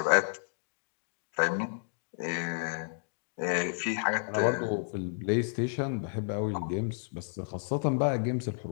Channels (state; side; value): silent; right; digital silence